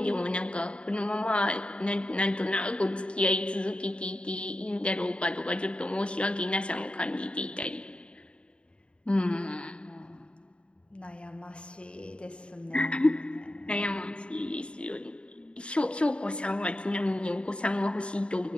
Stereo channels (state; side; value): late; right; 0.056 ms